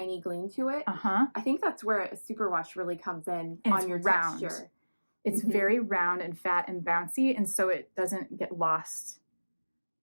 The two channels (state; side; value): inverted; both; correlation -1.00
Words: gleam to it. I think that's where a superwash really comes in on your round. texture. It's very round and fat and bouncy, and so it doesn't get lost.